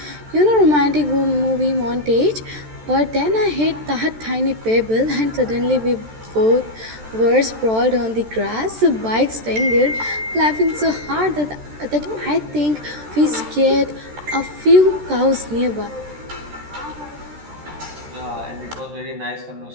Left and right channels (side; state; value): left; late; 13 ms